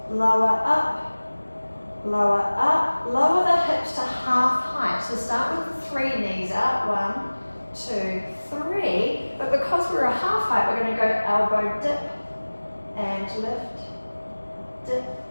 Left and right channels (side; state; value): both; inverted; correlation -1.00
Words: lower up, lower up. Lower the hips to half height. So start with 3 knees out. 1, 2, 3. But because we're a half height, we're going to go elbow dip and lift, dip,